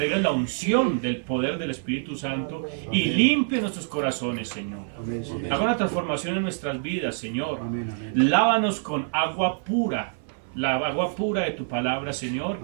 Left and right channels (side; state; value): left; silent; 56 dB below the other